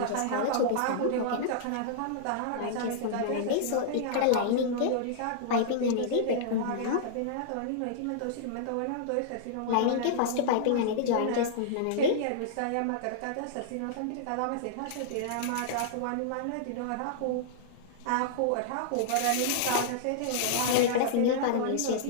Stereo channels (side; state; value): both; different; correlation -0.01